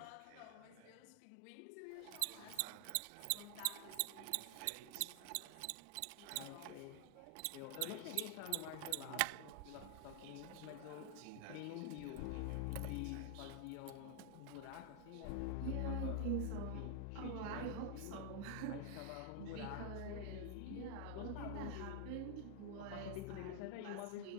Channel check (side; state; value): both; different; correlation 0.00